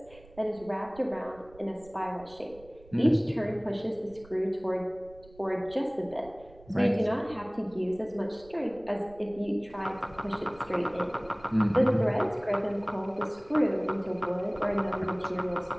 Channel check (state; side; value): noise; right; rumble, 23 dB below the sound